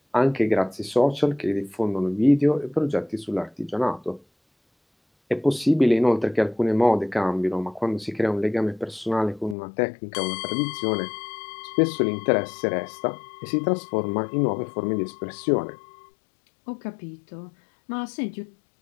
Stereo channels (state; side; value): drops out; right; at 9.6 s